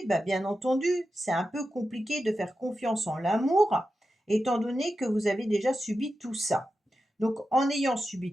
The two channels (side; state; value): both; normal; correlation 0.91